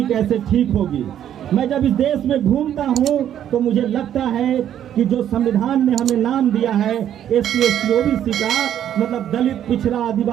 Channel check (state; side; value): quieter; left; 10.4 dB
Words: कैसे ठीक होगी। मैं जब इस देश में घूमता हूँ तो मुझे लगता है कि जो संविधान ने हमें नाम दिया है एससी, एसटी, ओबीसी का, मतलब दलित, पिछड़ा,